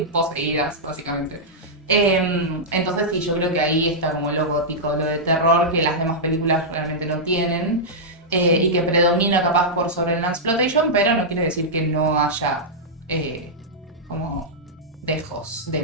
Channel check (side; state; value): both; normal; correlation -0.10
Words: poseídas, básicamente. Entonces sí, yo creo que ahí está como lo gótico, lo de terror que las demás películas realmente no tienen. Y que predomina capaz por sobre el exploitation, pero no quiere decir que no haya como dejos de